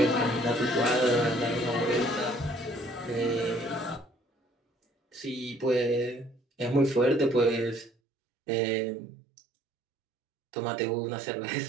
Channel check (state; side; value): drops out; left; at 7.9 s